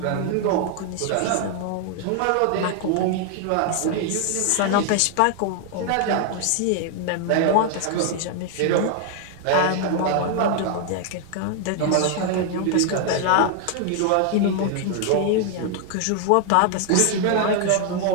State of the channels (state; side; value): different; both; correlation 0.00